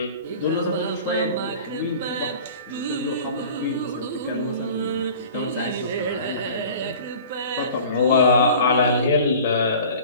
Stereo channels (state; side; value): inverted; both; correlation -0.43